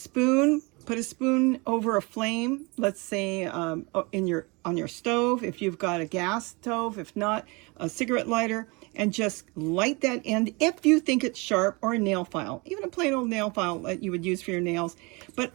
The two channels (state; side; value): quieter; left; 27.5 dB